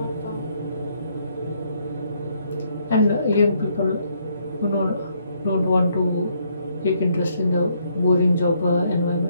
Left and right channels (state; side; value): inverted; both; correlation -0.71